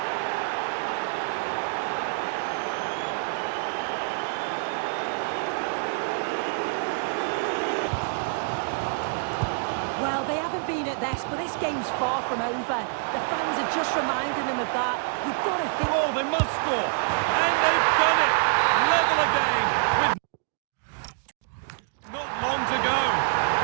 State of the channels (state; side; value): silent; left; digital silence